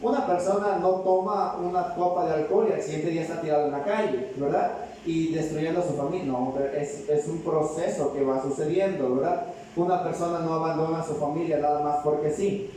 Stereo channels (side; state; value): both; identical; correlation 1.00